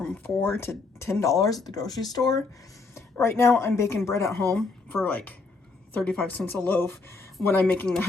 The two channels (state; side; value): quieter; right; 4.0 dB